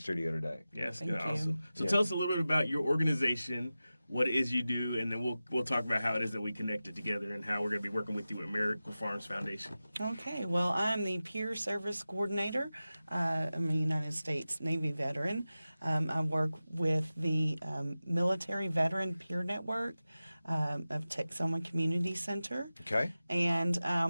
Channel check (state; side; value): inverted; both; correlation -0.95